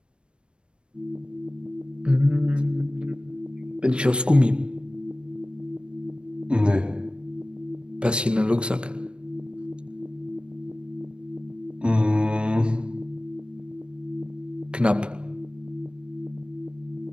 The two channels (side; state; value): left; late; 0.056 ms